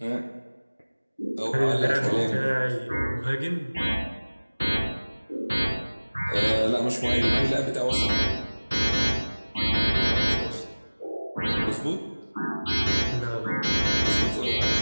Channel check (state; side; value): inverted; both; correlation -1.00